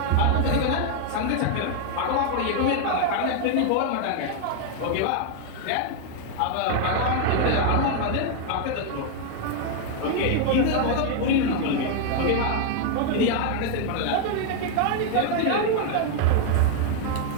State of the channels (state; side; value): different; both; correlation 0.00